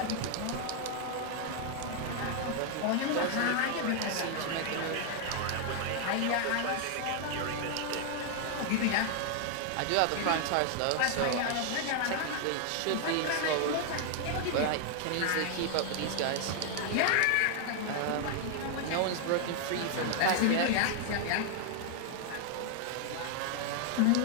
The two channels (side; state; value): both; different; correlation 0.00